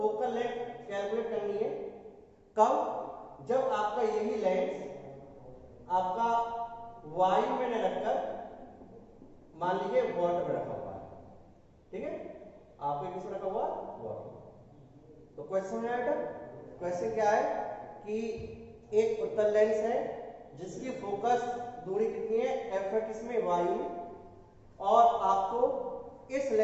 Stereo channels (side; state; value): both; identical; correlation 1.00